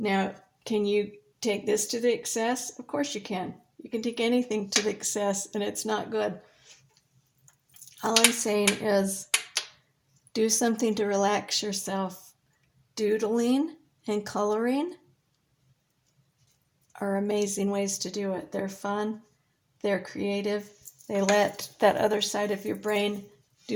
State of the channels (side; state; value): both; identical; correlation 1.00